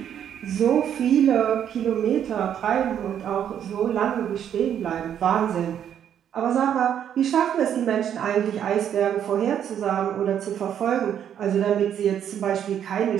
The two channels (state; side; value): quieter; left; 9.4 dB